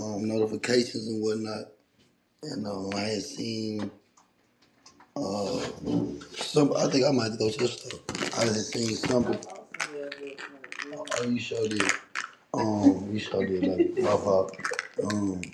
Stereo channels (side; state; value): both; identical; correlation 1.00